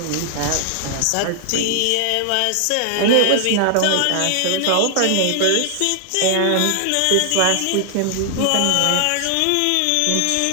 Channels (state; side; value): different; both; correlation -0.01